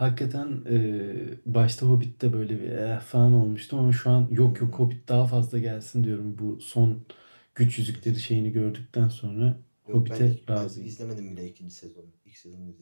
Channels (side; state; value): both; inverted; correlation -1.00